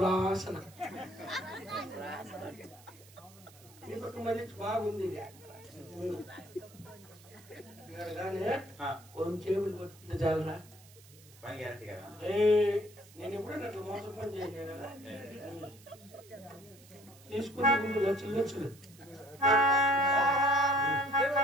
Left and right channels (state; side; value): noise; right; hiss, 23 dB below the sound